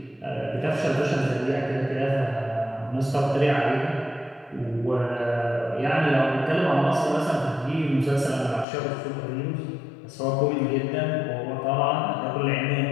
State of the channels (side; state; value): right; drops out; at 8.7 s